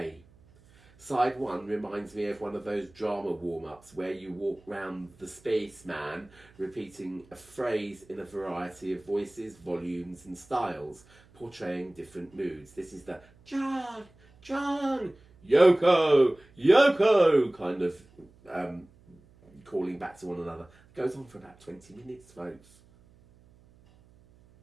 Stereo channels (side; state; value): right; noise; hum, 28 dB below the sound